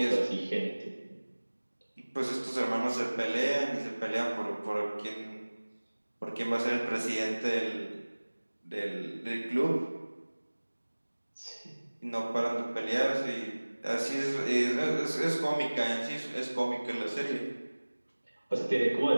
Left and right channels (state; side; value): inverted; both; correlation -1.00